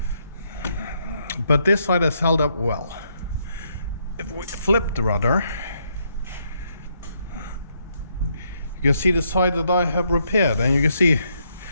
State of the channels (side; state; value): both; inverted; correlation -0.74